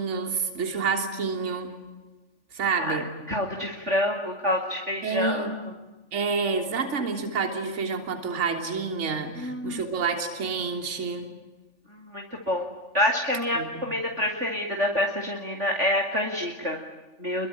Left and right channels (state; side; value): late; left; 3.4 ms